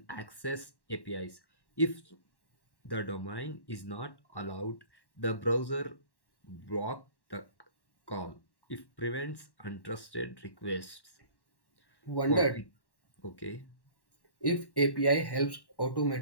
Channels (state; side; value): late; right; 1.1 ms